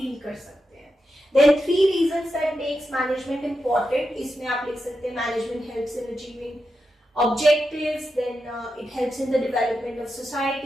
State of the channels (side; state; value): both; normal; correlation 0.88